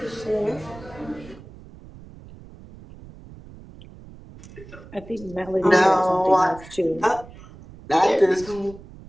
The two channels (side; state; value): right; noise; rumble, 19 dB below the sound